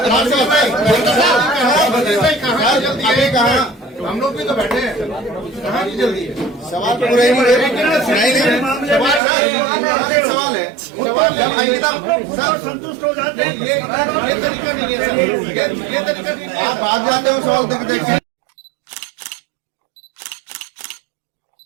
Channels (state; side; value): drops out; left; at 9.2 s